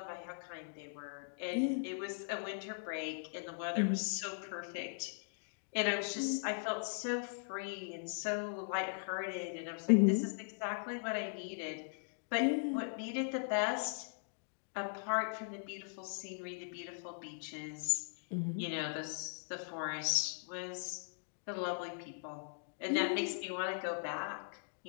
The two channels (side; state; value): right; silent; digital silence